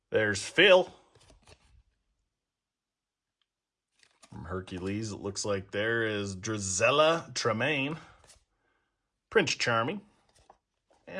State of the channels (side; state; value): both; identical; correlation 1.00